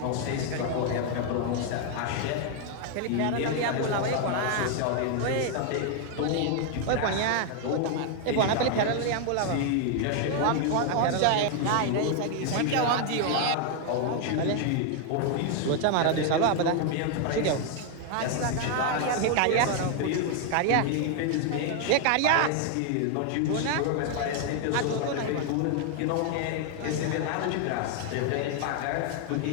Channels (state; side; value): different; both; correlation 0.00